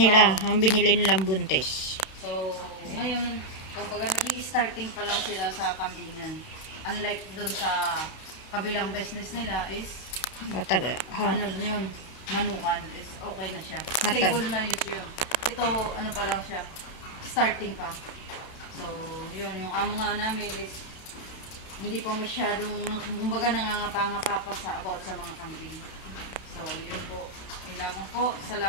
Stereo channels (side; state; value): right; late; 31 ms